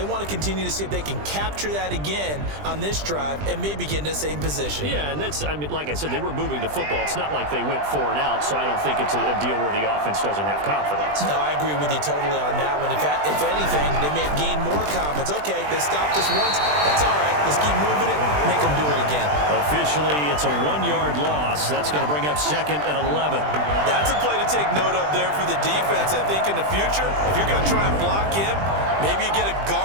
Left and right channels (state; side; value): late; left; 20 ms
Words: want to continue to see if they can capture that again on this drive and maybe get in the same position. Yeah, and that's, I mean, like I said, they were moving the football. It's not like they went 4 and out, so I don't think it's a deal where the offense doesn't have confidence. No, I agree with you totally on that one. If anything, they may have gained more confidence. Okay, they stopped us once. That's all right. Let's keep moving it. Make them do it again. Officially, it's a 1-yard loss. That's going to bring up 2nd and 11. That's a play to take note of there for the defense. I think in the future, if you're going to try and block him, maybe you get a